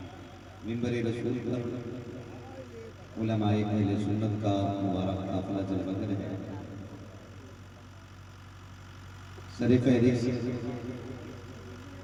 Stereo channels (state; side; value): identical; both; correlation 1.00